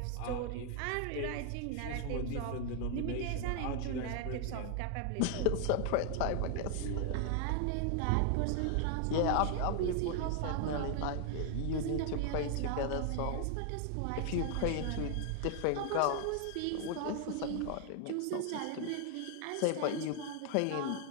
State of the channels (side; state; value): both; different; correlation 0.00